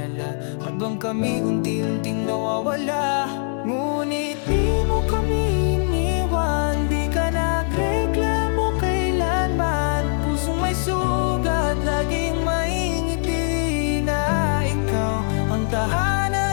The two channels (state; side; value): silent; right; 64 dB below the other